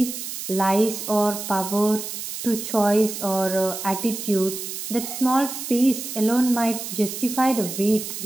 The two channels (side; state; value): right; noise; hiss, 7 dB below the sound